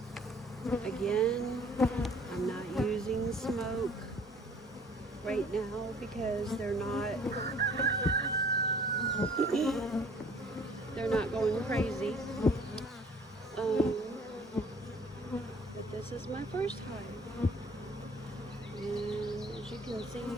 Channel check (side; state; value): both; normal; correlation 0.54